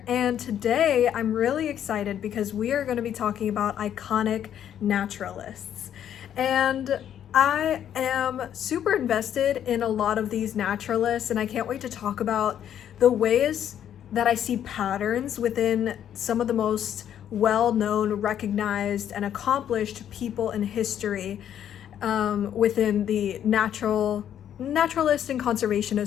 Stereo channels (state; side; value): quieter; right; 9.9 dB